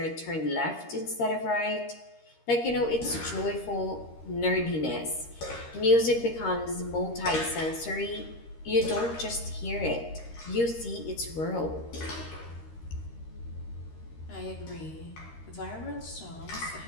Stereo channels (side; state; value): right; late; 13 ms